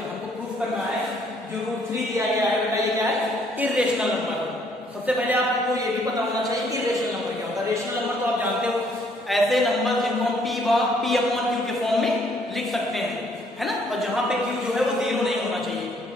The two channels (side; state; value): both; normal; correlation 0.65